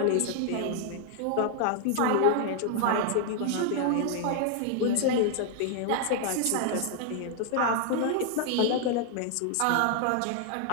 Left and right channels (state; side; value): different; both; correlation 0.00